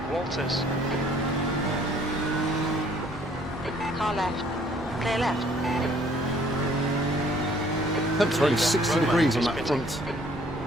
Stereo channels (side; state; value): both; normal; correlation 0.60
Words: Walters. Car left. Clear left. Temps are only 60 degrees on that front